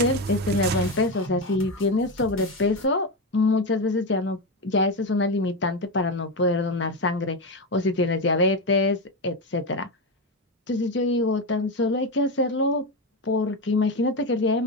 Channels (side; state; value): both; normal; correlation 0.14